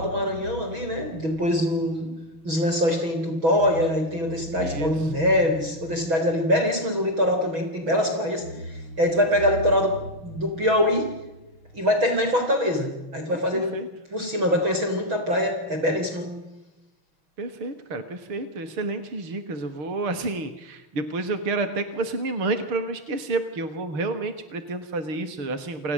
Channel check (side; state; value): left; late; 6.2 ms